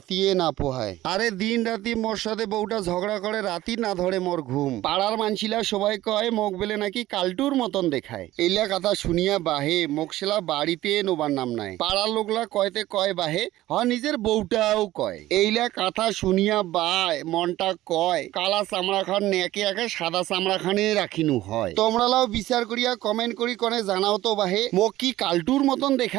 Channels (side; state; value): left; quieter; 15.7 dB